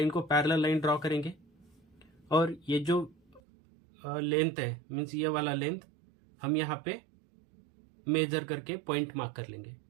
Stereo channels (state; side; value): drops out; left; at 3.4 s